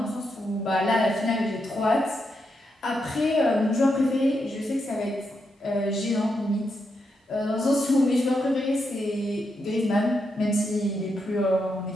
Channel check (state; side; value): normal; both; correlation 0.83